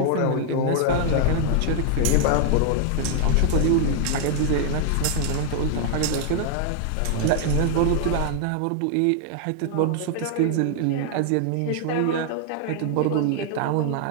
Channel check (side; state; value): both; different; correlation 0.00